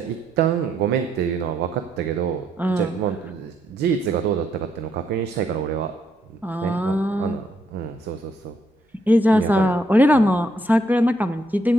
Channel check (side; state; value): both; normal; correlation 0.73